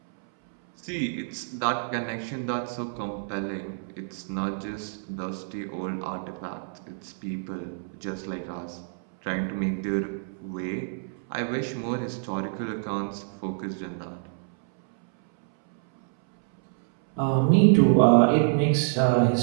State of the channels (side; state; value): left; silent; 60 dB below the other